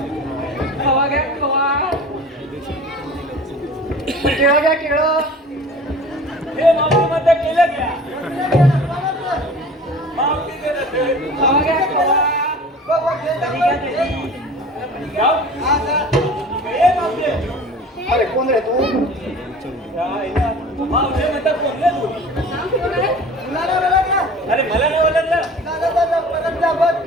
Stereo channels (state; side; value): normal; both; correlation 0.42